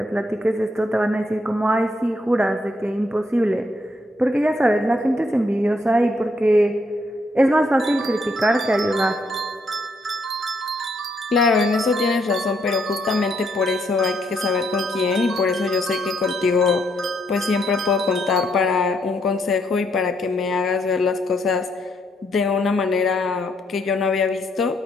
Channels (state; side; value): normal; both; correlation 0.74